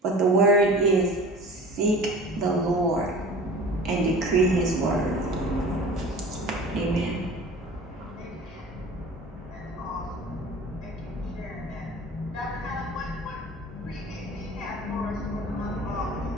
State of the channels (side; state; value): both; normal; correlation 0.40